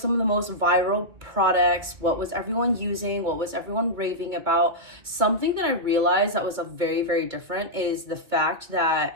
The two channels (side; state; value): left; late; 2.3 ms